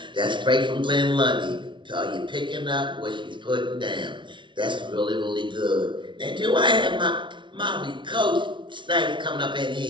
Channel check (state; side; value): late; left; 0.24 ms